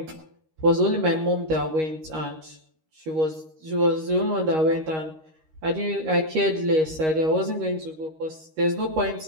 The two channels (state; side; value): late; left; 13 ms